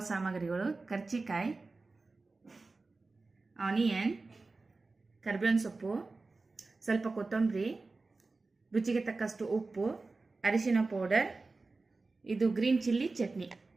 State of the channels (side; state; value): left; quieter; 3.7 dB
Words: ಸಾಮಗ್ರಿಗಳು: ಕರ್ಜಿಕಾಯಿ, ಆನಿಯನ್, ಕರಿಬೇವಿನ ಸೊಪ್ಪು, ಸ್ವಲ್ಪ ಕೊತ್ತಂಬರಿ, ರುಚಿಗೆ ತಕ್ಕಷ್ಟು ಉಪ್ಪು, ಅರಿಶಿನ ಪೌಡರ್, ಇದು ಗ್ರೀನ್ ಚಿಲ್ಲಿ ಚಟ್ನಿ.